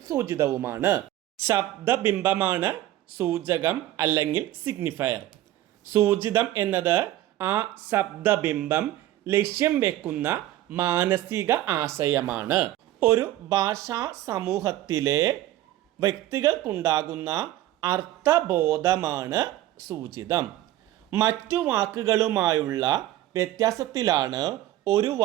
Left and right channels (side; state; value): left; quieter; 14.4 dB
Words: സൂചിതവുമാണ്. ശബ്ദബിംബമാണ് സൂചകം അല്ലെങ്കിൽ സിഗ്നിഫയർ. സൂചിതം എന്നത് ആ ശബ്ദബിംബം ലക്ഷ്യം വെക്കുന്ന മാനസിക ആശയമാണ്. ഒരു ഭാഷാ സമൂഹത്തിലെ വ്യക്തികൾക്കുണ്ടാകുന്ന അർത്ഥബോധമാണ് സൂചിതം. മറ്റു വാക്കുകളുമായുള്ള വ്യത്യാസത്തിലാണ് ഒരു